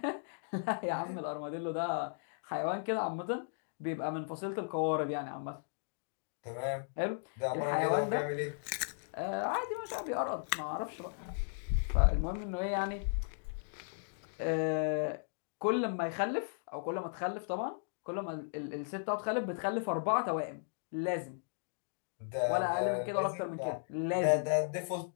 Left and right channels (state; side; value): silent; right; digital silence